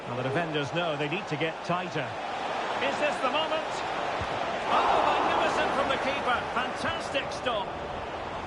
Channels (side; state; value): both; identical; correlation 1.00